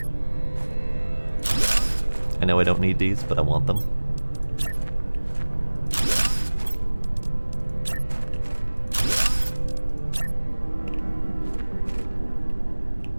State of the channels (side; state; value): both; inverted; correlation -1.00